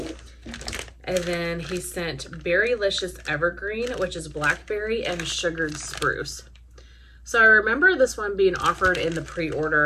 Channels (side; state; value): both; identical; correlation 1.00